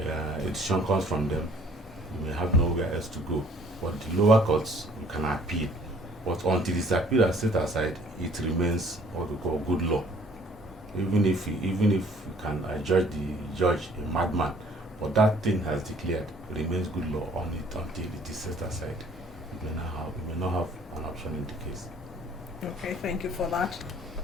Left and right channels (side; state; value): both; normal; correlation 0.56